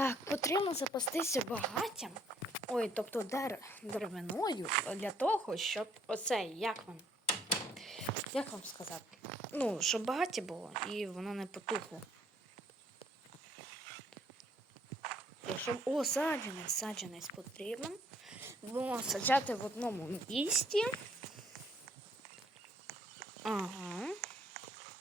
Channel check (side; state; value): both; normal; correlation 0.65